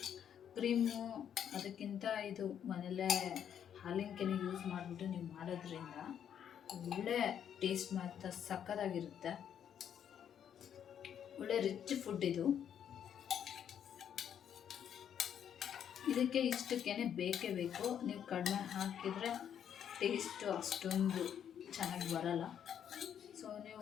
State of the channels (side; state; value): right; quieter; 9.0 dB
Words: ಕ್ರೀಮು ಅದಕ್ಕಿಂತ ಇದು ಮನೆಯಲ್ಲೇ ಹಾಲಿನ ಕೆನೆ ಯೂಸ್ ಮಾಡಿಬಿಟ್ಟು ನೀವು ಮಾಡೋದ್ರಿಂದ ಒಳ್ಳೆ ಟೇಸ್ಟ್ ಮಾತ್ರ ಸಕ್ಕತ್ತಾಗಿರುತ್ತೆ. ಒಳ್ಳೆ ರಿಚ್ ಫುಡ್ ಇದು. ಇದಕ್ಕೆ ಇಷ್ಟಕ್ಕೇ ಬೇಕೇ ಬೇಕು. ನೀವು ಕಡಿಮೆ ಹಾಕಿದರೆ ಟೇಸ್ಟು ಅಷ್ಟೊಂದು ಚೆನ್ನಾಗಿ ಬರಲ್ಲ. ಸೊ